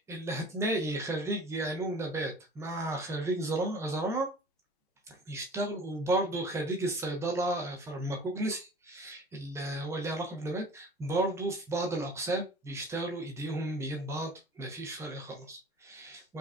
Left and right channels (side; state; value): both; normal; correlation 0.45